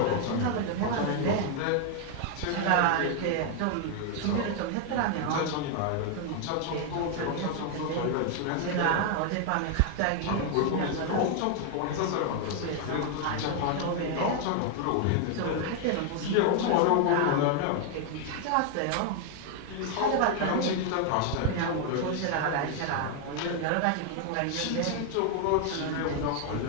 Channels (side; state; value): both; different; correlation 0.00